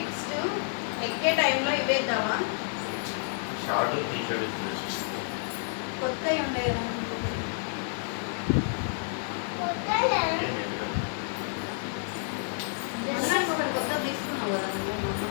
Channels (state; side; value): silent; right; 58 dB below the other